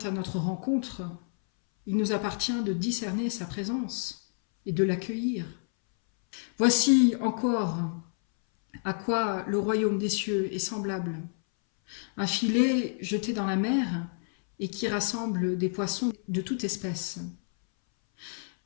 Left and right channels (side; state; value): right; silent; 59 dB below the other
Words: à notre rencontre, il nous appartient de discerner sa présence et de l'accueillir. Voici encore À quoi le royaume des cieux est semblable? Un filet jeté dans la mer et qui rassemble des poissons de toute espèce.